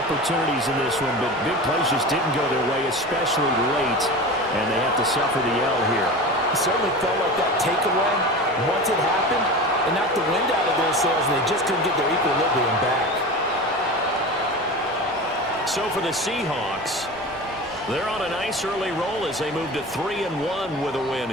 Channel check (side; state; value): right; noise; rumble, 24 dB below the sound